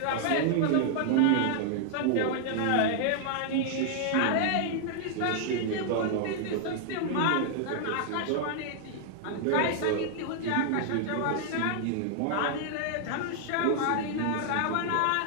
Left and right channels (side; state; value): both; different; correlation -0.01